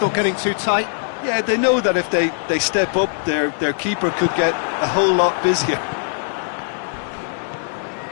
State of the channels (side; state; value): right; silent; digital silence